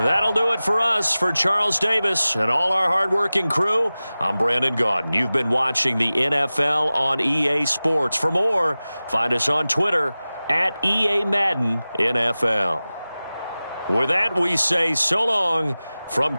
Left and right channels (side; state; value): both; inverted; correlation -0.97